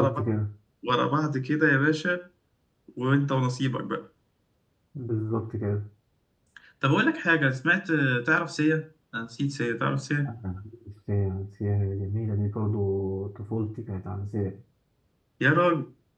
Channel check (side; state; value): both; identical; correlation 1.00